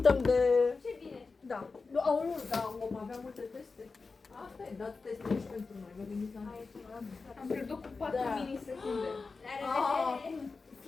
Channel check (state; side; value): quieter; right; 4.3 dB